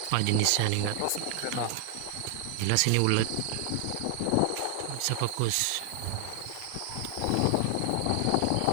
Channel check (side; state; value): both; different; correlation 0.00